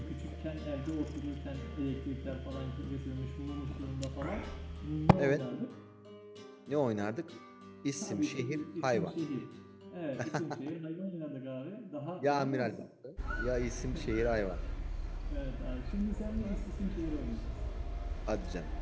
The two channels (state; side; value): identical; both; correlation 1.00